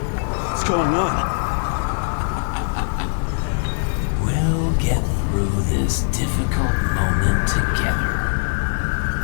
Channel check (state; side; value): silent; right; 58 dB below the other